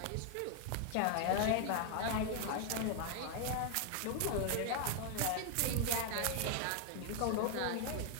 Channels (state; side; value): different; both; correlation 0.01